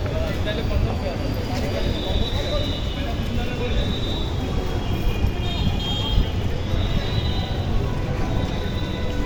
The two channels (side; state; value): both; identical; correlation 1.00